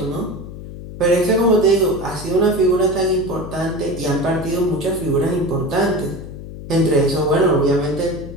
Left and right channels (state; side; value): noise; left; hum, 12 dB below the sound